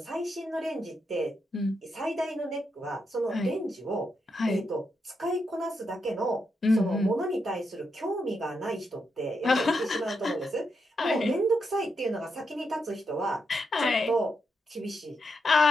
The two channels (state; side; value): normal; both; correlation 0.83